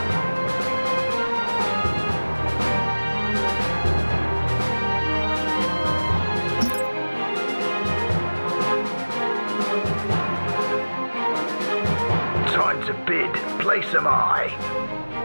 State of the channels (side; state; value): both; inverted; correlation -1.00